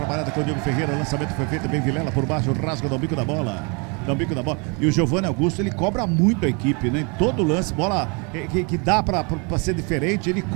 com o Diego Ferreira. Lançamento foi feito bem Vilela por baixo. Rasga no bico da bola. E o Giovanni Augusto, ele cobra muito a equipe, né? Em todo lance, bola que dá pra ser diferente. Ele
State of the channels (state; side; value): quieter; left; 32.7 dB